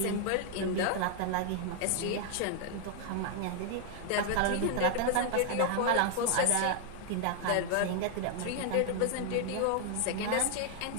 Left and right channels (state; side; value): different; both; correlation 0.00